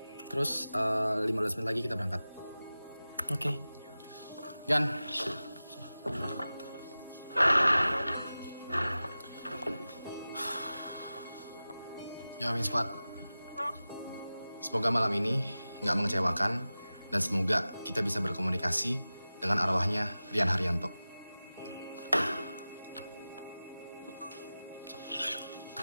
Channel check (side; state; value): both; inverted; correlation -0.96